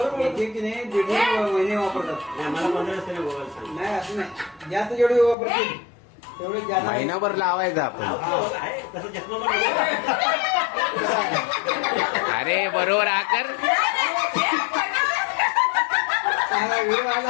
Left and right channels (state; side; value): drops out; right; at 5.4 s